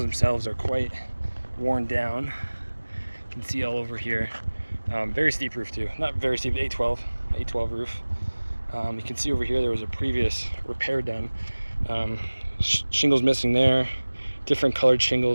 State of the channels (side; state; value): both; inverted; correlation -1.00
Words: themselves are quite worn down. You can see all over here. Very steep roof too, not very steep, 812 roof. You can see over here there was a previous repair done. Shingles missing there, different colored